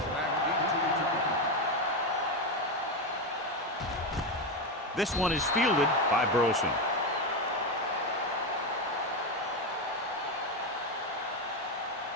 back deep to return. This one is fielded by Burleson.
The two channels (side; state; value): both; normal; correlation 0.11